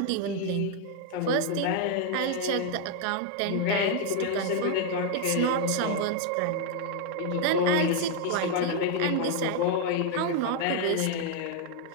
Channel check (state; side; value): different; both; correlation 0.00